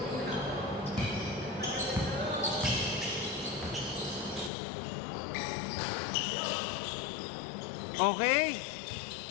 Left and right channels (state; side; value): drops out; right; at 4.5 s